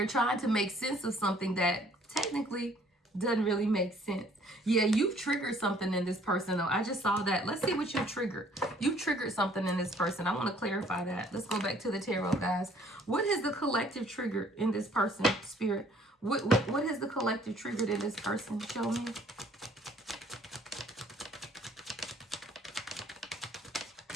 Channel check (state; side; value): normal; both; correlation 0.59